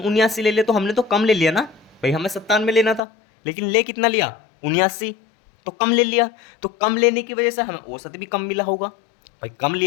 79 ले लिया, तो हमने तो कम ले लिया ना, भाई हमें 97 लेना था लेकिन ले कितना लिया 79, तो कम ले लिया, तो कम लेने की वजह से हमें औसत भी कम मिला होगा, भाई कम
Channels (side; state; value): right; drops out; at 3.0 s